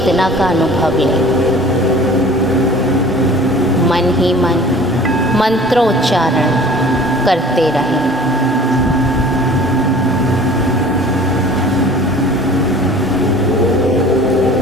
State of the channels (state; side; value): normal; both; correlation 0.46